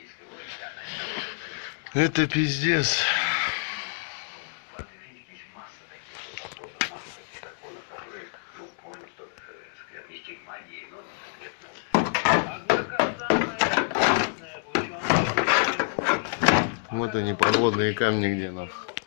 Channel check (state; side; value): silent; right; digital silence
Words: Это пиздец. Вот они, подводные камни, где нах.